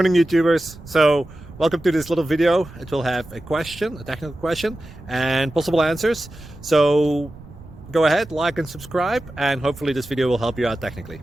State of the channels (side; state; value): right; noise; rumble, 18 dB below the sound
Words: YouTubers. So welcome to this little video. It will have a question, a technical question, and possible answers. So go ahead, like and subscribe, and hopefully this video will help you out technically.